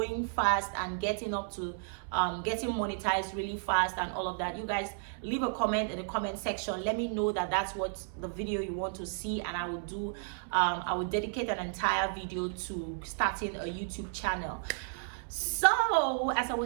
fast and getting up to getting monetized really fast and all of that, you guys leave a comment in the comment section. Let me know that that's what the video you want to see, and I will dedicate an entire video to starting a YouTube channel. So as I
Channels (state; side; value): silent; left; 56 dB below the other